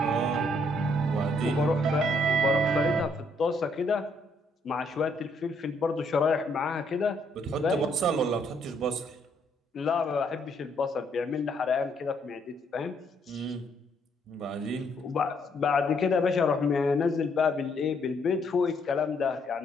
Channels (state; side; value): normal; both; correlation 0.70